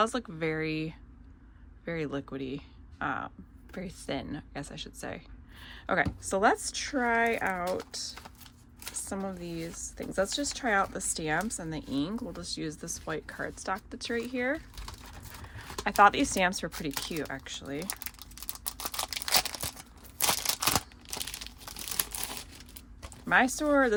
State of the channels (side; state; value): both; identical; correlation 1.00